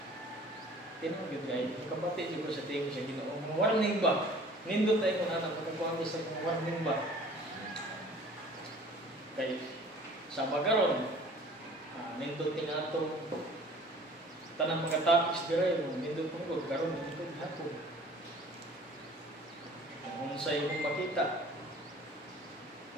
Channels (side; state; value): both; normal; correlation 0.49